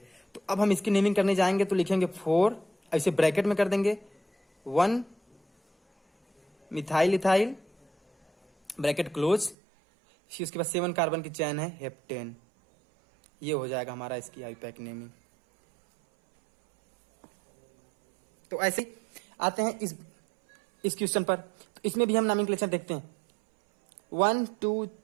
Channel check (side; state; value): left; drops out; at 9.6 s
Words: तो अब हम इसकी नेमिंग करने जाएंगे तो लिखेंगे 4, ऐसे ब्रैकेट में कर देंगे 1 मिथाइल इथाइल, ब्रैकेट क्लोज, फिर उसके बाद 7 कार्बन की चैन है हेप्टेन। ये हो जाएगा हमारा इसकी आईपैक नेमिंग। तो ऐसे ही आते हैं इस क्वेश्चन पर। तो इसमें भी हम नॉमेनक्लेचर देखते हैं, 1